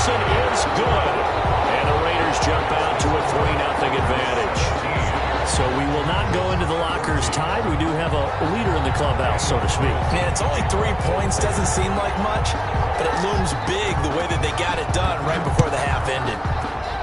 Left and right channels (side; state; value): both; identical; correlation 1.00